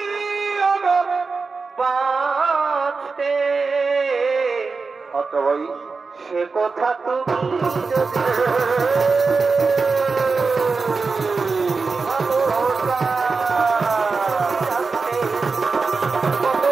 বাঁচতে আচ্ছা ভাই সে কথা তুমি যদি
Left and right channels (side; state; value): left; quieter; 4.4 dB